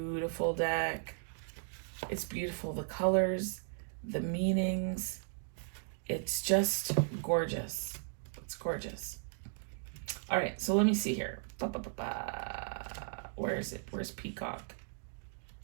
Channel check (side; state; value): left; silent; digital silence